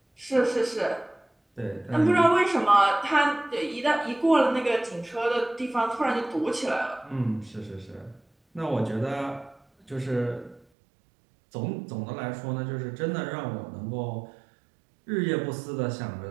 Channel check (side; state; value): left; drops out; at 10.6 s